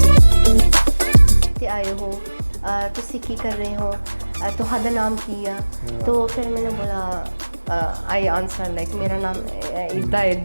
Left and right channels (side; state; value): both; inverted; correlation -1.00